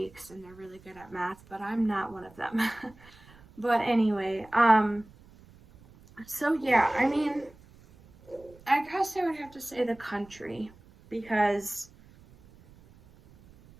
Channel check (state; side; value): noise; right; rumble, 25 dB below the sound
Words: and they're really good at math, but I'm not one of them. But anyway, so yeah, I mean, I guess I would have to say the country, because